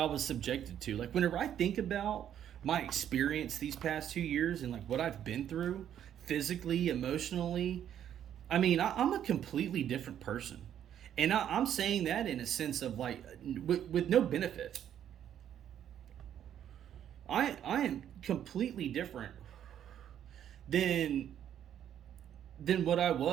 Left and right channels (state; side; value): quieter; left; 10.1 dB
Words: was subjected to. Like, whenever I think about my experience these past 2 years and like what I've been through physically, emotionally, I mean, I'm a completely different person. And I'm saying that in a sense of like, with no benefit. I am completely different than what I